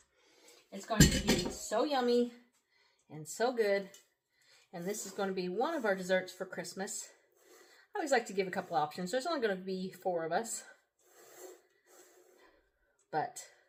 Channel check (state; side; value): identical; both; correlation 1.00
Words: It's going to be so yummy and so good. And this is going to be one of our desserts for Christmas. I always like to give a couple options. There's only going to be 4 of us. But,